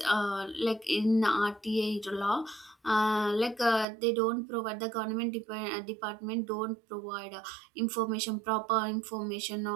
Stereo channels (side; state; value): left; drops out; at 3.9 s